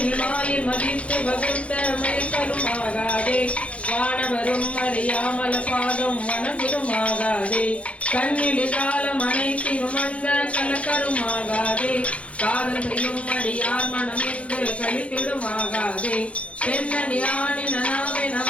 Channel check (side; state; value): right; late; 0.063 ms